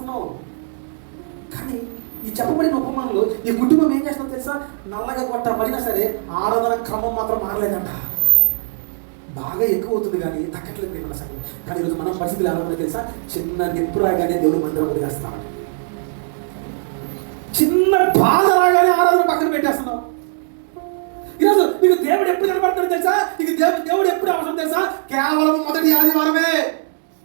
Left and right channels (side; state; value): left; silent; 65 dB below the other